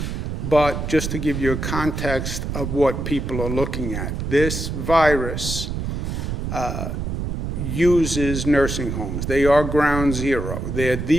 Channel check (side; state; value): right; noise; rumble, 3 dB below the sound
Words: but just to give you a context of what people are looking at. This virus uses nursing homes. They are ground zero. They're